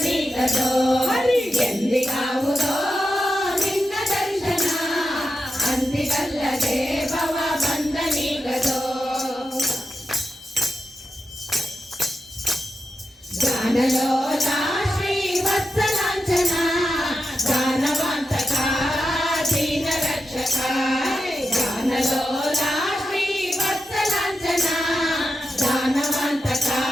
ಗಾನಲೋಲಾ ಶ್ರೀ ವತ್ಸಲಾಂಚನ ಗಾನವಂತಕ ದೀನ ರಕ್ಷಕ. ಗಾನಲೋಲಾ ಶ್ರೀ ವತ್ಸಲಾಂಚನ ಗಾನವಂತಕ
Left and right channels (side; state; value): both; normal; correlation 0.89